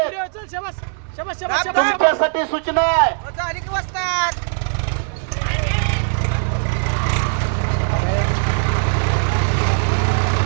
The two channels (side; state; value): left; silent; digital silence